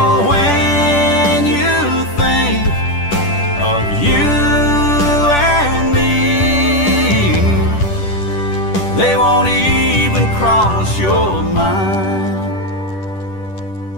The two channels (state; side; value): late; right; 10 ms